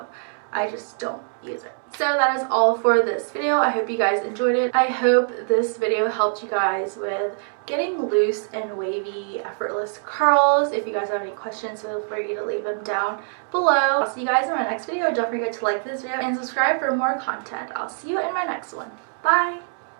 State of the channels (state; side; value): silent; left; 63 dB below the other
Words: I just don't use it. So that is all for this video. I hope you guys enjoyed it. I hope this video helped you guys with getting loose and wavy, effortless curls. If you guys have any questions, feel free to leave them down below. I'll see you guys in my next video. Don't forget to like this video and subscribe for more content. I'll see you in my next one. Bye!